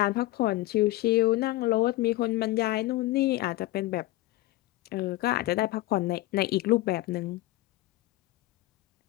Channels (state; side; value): quieter; right; 17.7 dB